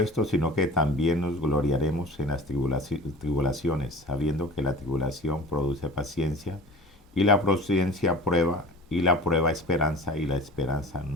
sino que también nos gloriaremos en las tribulaciones, sabiendo que la tribulación produce paciencia, y la paciencia prueba, y la prueba esperanza, y la esperanza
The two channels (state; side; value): normal; both; correlation 0.40